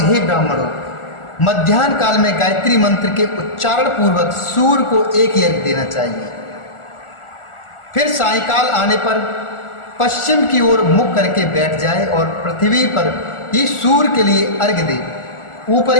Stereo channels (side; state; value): right; late; 1.4 ms